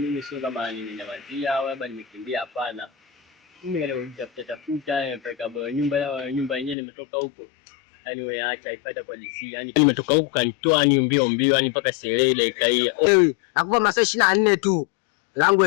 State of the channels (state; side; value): drops out; right; at 6.8 s